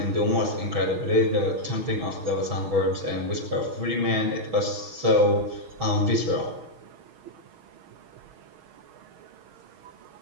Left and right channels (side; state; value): left; late; 6.4 ms